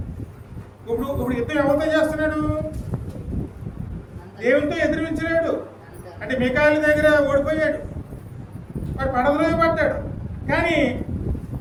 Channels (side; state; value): both; identical; correlation 1.00